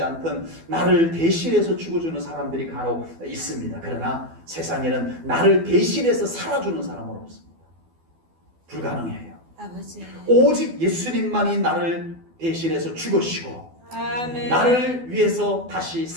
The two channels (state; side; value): late; left; 12 ms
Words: 않든 나를 대신해서 죽어주는 사람들이 간혹 있습니다. 그러나 세상에는 나를 대신해서 살아주는 사람은 없습니다. 불가능해요. 아버지. 오직 예수님만이 나를 대신해서 죽으시고 아멘. 나를 위해서 다시